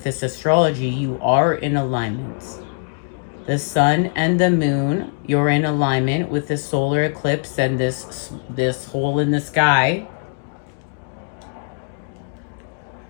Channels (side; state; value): right; silent; digital silence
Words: this astrology, you are in alignment. The sun and the moon, you're in alignment with the solar eclipse and this hole in the sky